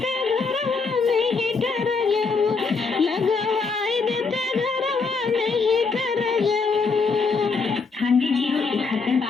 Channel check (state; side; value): quieter; right; 4.6 dB